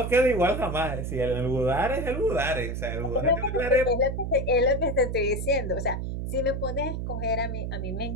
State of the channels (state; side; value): noise; right; hum, 4 dB below the sound